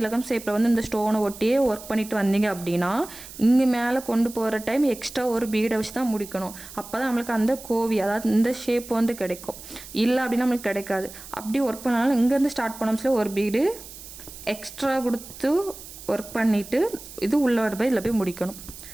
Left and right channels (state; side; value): noise; right; hiss, 15 dB below the sound